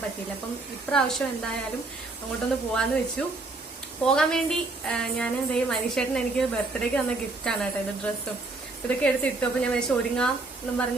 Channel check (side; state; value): left; quieter; 3.3 dB